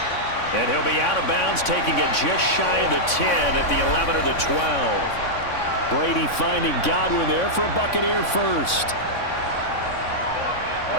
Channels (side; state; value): right; late; 3.6 ms